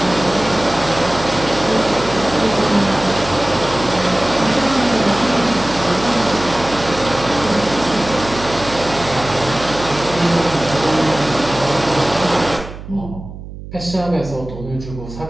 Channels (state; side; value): noise; right; hum, 13 dB below the sound